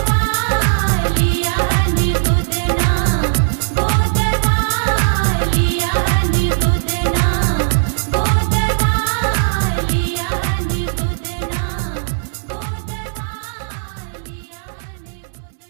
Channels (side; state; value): left; silent; digital silence